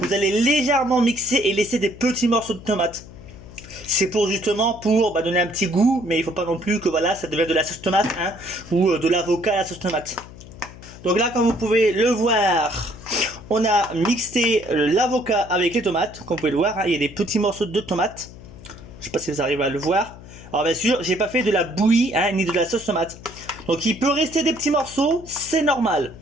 Vous allez légèrement mixer et laisser des petits morceaux de tomate. C'est pour justement donner un petit goût, mais il faut pas non plus que voilà ça devienne de la sauce tomate ou de l'avocat à la sauce tomate. Donc là, comme vous pouvez le voir, on a mixé l'avocat avec les tomates. Comme vous pouvez le voir, il y a des petits morceaux de tomates. Je sais pas si vous arrivez à le voir. Alors bien sûr, j'ai pas fait de la bouillie ni de la sauce tomate. Donc il peut rester des petits morceaux, c'est normal.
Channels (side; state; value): left; noise; hum, 17 dB below the sound